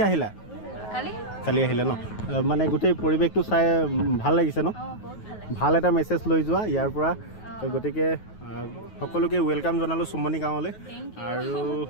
আহিলা? কালি আহিলে ন? মানে গোটেই পৰিৱেশটো চাই ভাল লাগিছে ন? বহুত ভাল লাগিছে। ভাল এটা মেছেজ লৈ যোৱা ইয়াৰ পৰা। গতিকে সকলোকে ৱেলকাম জনালোঁ চুমনি গাঁৱলৈ। আৰু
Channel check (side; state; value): right; late; 9.3 ms